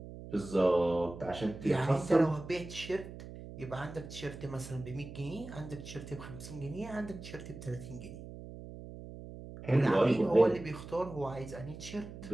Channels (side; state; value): right; noise; hum, 13 dB below the sound